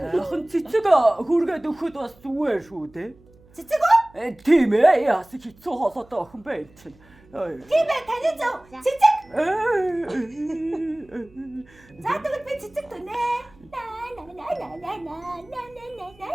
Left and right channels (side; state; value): right; noise; hum, 28 dB below the sound